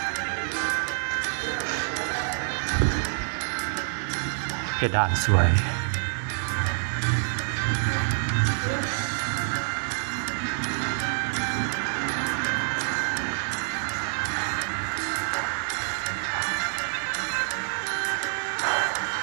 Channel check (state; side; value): silent; left; digital silence